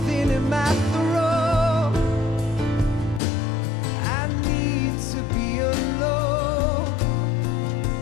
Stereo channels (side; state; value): right; drops out; at 3.2 s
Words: in my throat. I need to be alone